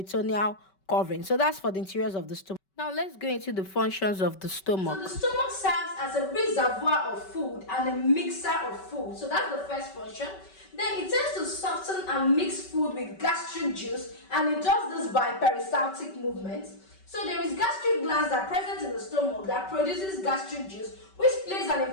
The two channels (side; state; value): right; late; 5.2 ms